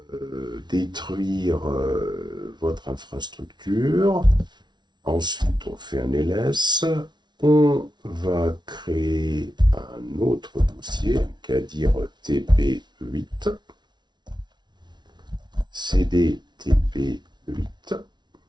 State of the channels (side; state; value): left; late; 0.21 ms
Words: détruire votre infrastructure. Ensuite, on fait un ls. On va créer un autre dossier, qu'à dire TP8, CD TP8.